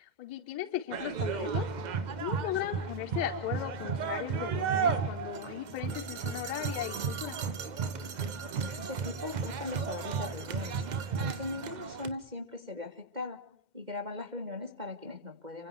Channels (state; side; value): late; left; 2.1 ms